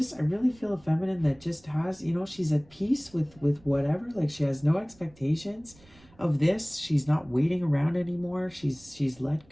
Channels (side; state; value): right; noise; rumble, 28 dB below the sound